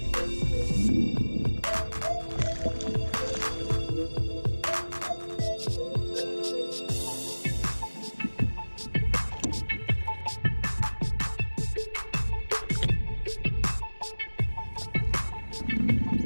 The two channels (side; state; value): both; inverted; correlation -1.00